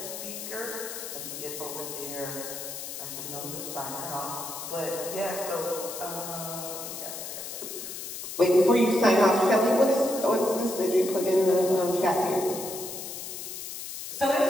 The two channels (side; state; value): left; noise; hiss, 8 dB below the sound